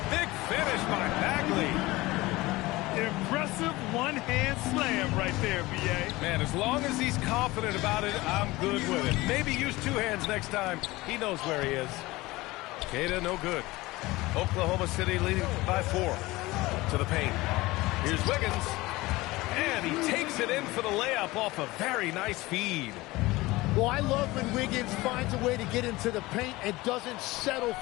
big finish by Bagley. Impressive one-hand slam right there, B.A. Man, as long as he's confident about it, I'm good with it. Maybe use 2 hands next time. He knows where he is. Queta, no good. Oklahoma City leading by 4 to the paint. Here's Wiggins. And he takes it in for the layup off a very nice feed. Well, I love when Wiggins finds a way to get into the paint and doesn't settle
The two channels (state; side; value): quieter; right; 20.2 dB